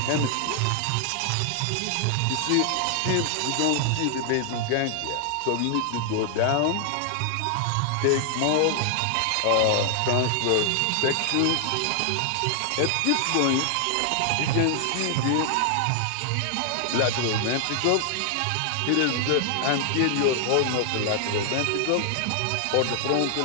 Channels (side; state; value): both; different; correlation 0.00